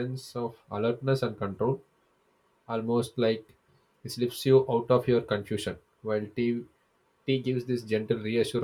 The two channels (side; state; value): both; identical; correlation 1.00